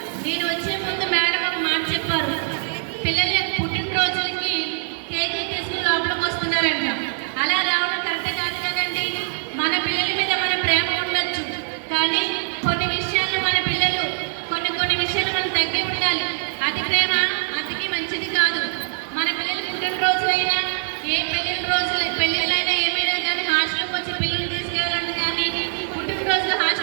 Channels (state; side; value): silent; left; digital silence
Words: నేను వచ్చే ముందు మేడం ఒక మాట చెప్పారు, పిల్లలు